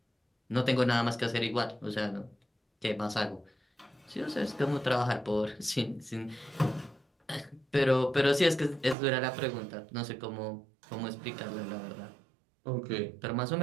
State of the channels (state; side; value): drops out; left; at 9.0 s